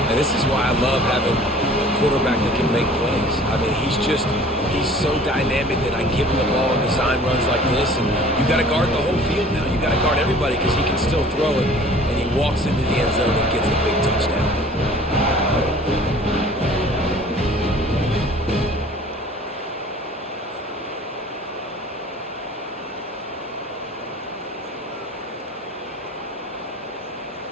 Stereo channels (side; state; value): both; normal; correlation 0.49